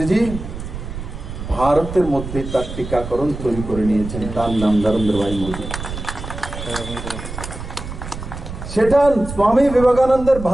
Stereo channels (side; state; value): right; noise; rumble, 9 dB below the sound